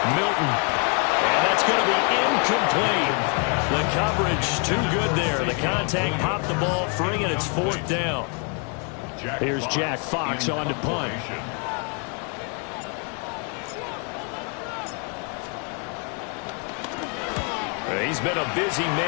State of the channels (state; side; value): quieter; right; 37.4 dB